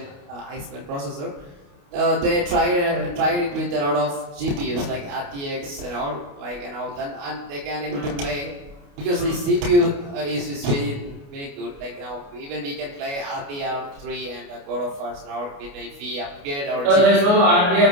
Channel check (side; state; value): left; late; 29 ms